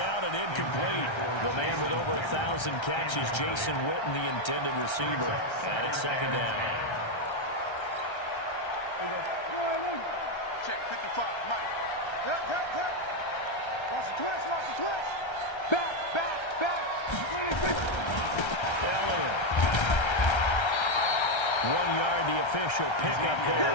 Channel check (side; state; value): right; late; 1.3 ms